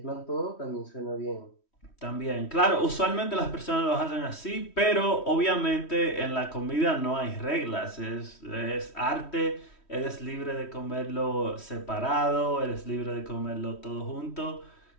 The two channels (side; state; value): right; late; 3.1 ms